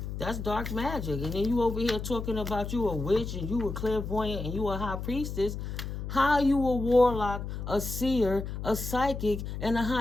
That's dark magic. And then you over here talking about you a witch and you a clairvoyant and you a high priestess. How you a warlock, a seer, a psychic, and a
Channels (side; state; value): left; noise; hum, 6 dB below the sound